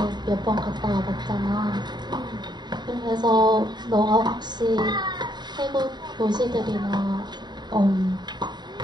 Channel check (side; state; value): left; late; 0.21 ms